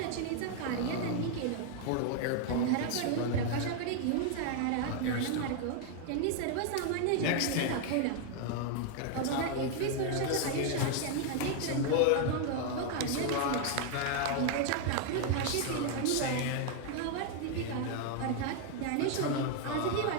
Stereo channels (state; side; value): different; both; correlation 0.00